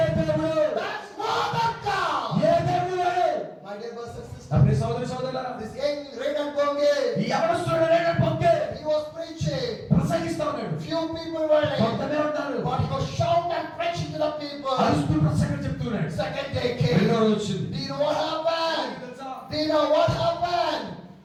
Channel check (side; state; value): both; identical; correlation 1.00